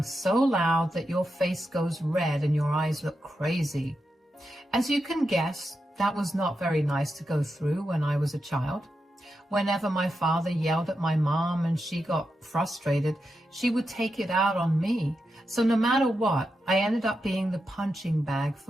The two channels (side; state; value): both; normal; correlation 0.87